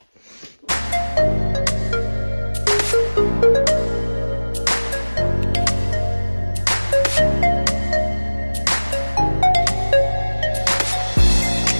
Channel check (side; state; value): both; inverted; correlation -1.00